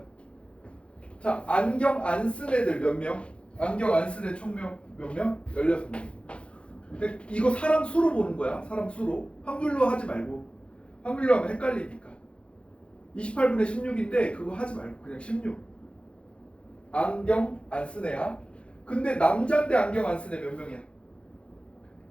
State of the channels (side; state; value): right; late; 0.059 ms